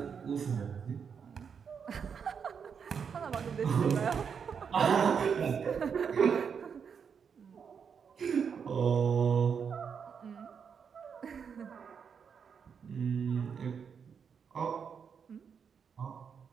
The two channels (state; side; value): quieter; left; 6.7 dB